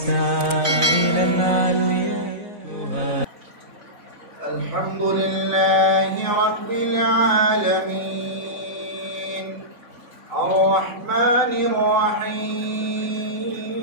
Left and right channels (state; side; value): late; left; 3.9 ms